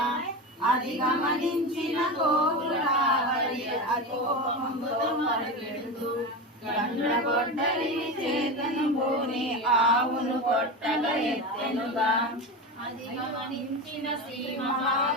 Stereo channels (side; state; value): both; normal; correlation 0.21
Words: అది గమనించిన గోవులావరి అకోపముతో మరుగెడుతూ గండ్రగొడ్డలిని చేతను భూని ఆవును కొట్టగా ఎత్తెనుగా. అది గమనించిన శ్రీ